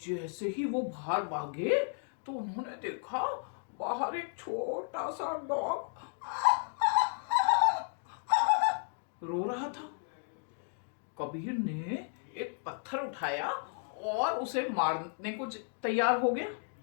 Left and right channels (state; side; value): silent; right; 55 dB below the other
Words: ही वो बाहर भागे तो उन्होंने देखा बाहर एक छोटा सा डॉग रो रहा था। कबीर ने एक पत्थर उठाया और उसे मारने को तैयार हो गया,